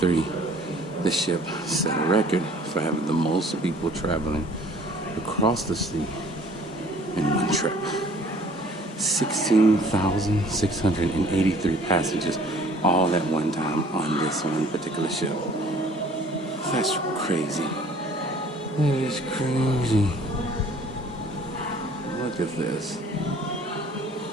the ship set a record for having the most people traveling across the sea in one trip. 16,683 passengers all at one time on this one particular ship. That's crazy. That is crazy. Look at this.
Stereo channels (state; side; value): normal; both; correlation 0.54